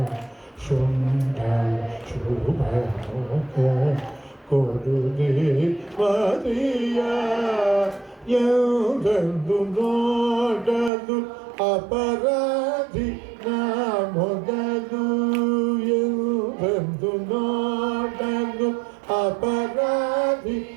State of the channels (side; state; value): left; drops out; at 10.9 s